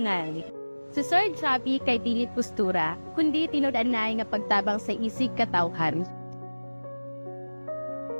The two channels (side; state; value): both; inverted; correlation -1.00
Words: Si Sir Javi kay dili postura, kundi tinud-anay nga pagtabang sa isig katawhan.